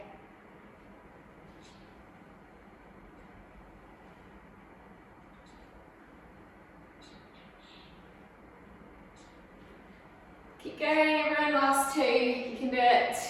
Keep going, everyone, last 2, you can do it.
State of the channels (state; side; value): identical; both; correlation 1.00